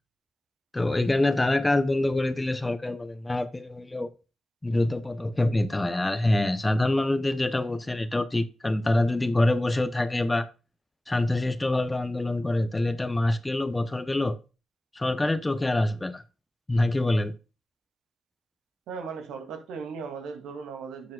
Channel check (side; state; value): both; normal; correlation 0.97